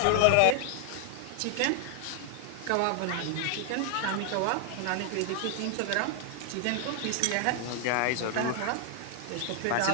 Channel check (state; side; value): different; both; correlation 0.00